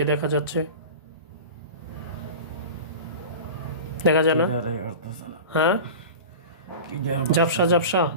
দেখা যাচ্ছে? দেখা যায় না? হ্যাঁ, ঝাপসা ঝাপসা।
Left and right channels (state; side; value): inverted; both; correlation -0.32